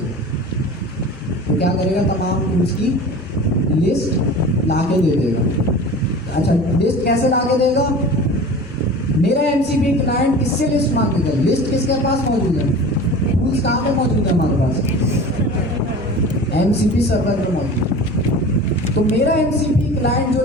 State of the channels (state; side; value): normal; both; correlation 0.37